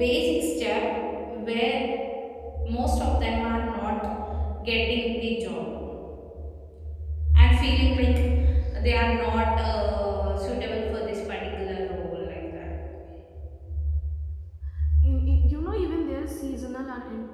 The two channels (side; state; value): both; identical; correlation 1.00